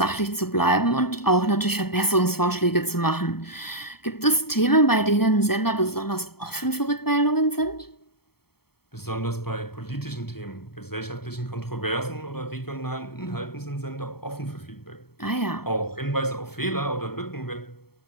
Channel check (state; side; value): late; right; 0.95 ms